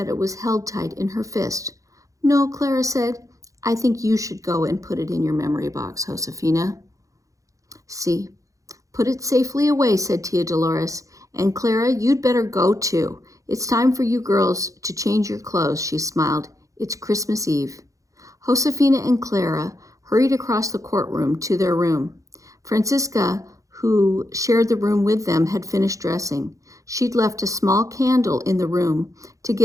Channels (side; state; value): left; late; 0.16 ms